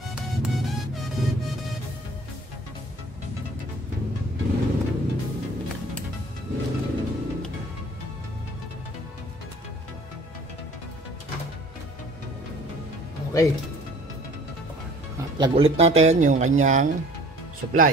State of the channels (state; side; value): normal; both; correlation 0.50